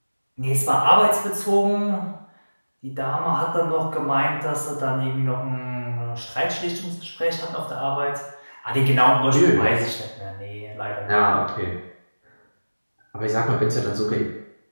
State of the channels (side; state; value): both; inverted; correlation -1.00